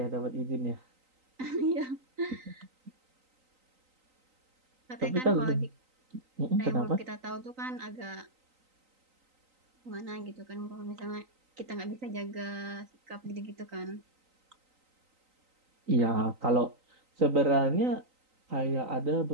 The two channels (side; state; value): left; late; 3.9 ms